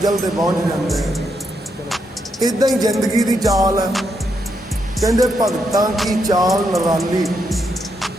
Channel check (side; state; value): both; normal; correlation 0.80